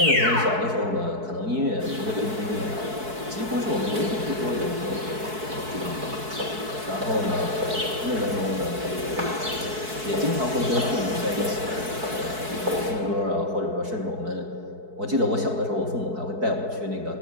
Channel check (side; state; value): left; late; 4.6 ms